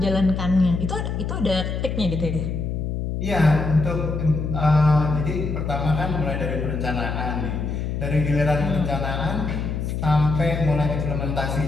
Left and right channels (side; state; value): left; noise; hum, 3 dB below the sound